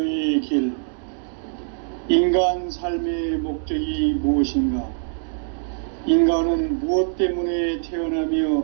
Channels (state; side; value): silent; left; 63 dB below the other